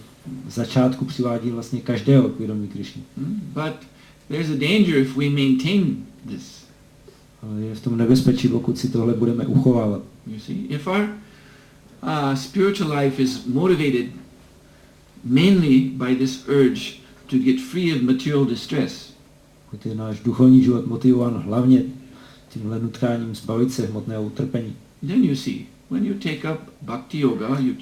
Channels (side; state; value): both; identical; correlation 1.00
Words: v začátku přivádí vlastně každého k vědomí Krishny. But there's a danger if we maintain this. Ale je v tom nebezpečí, pokud si tohle budeme uchovávat. You see, if our spiritual life is motivated mainly by this urge to get free of material distress, pokud je náš duchovní život motivován hlavně tímhle nutkáním zbavit se hmotného utrpení, then you see, when you take up bhakti yoga, you